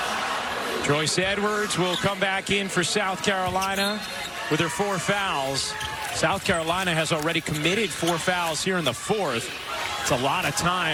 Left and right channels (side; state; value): both; identical; correlation 1.00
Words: Joyce Edwards will come back in for South Carolina with her 4 fouls. South Carolina has already committed 4 fouls here in the 4th. It's a lot of